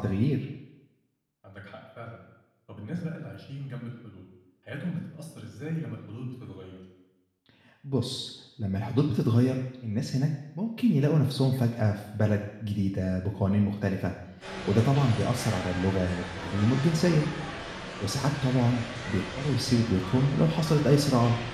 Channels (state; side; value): identical; both; correlation 1.00